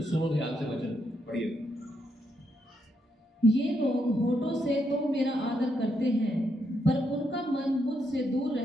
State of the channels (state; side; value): normal; both; correlation 0.79